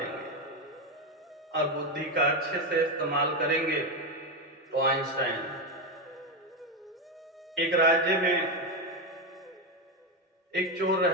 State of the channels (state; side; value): normal; both; correlation 0.11